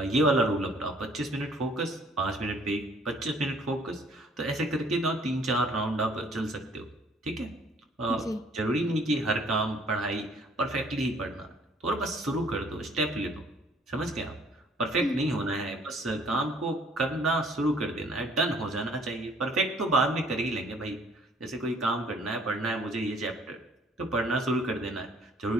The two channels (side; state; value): both; normal; correlation 0.59